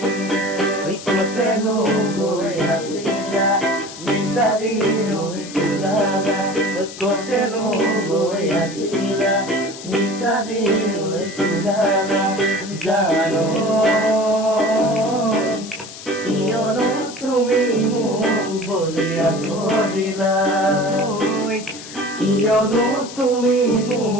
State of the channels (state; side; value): noise; left; hiss, 14 dB below the sound